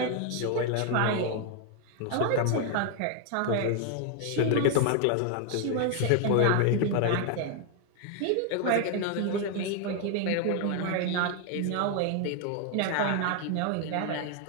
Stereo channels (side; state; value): both; different; correlation 0.00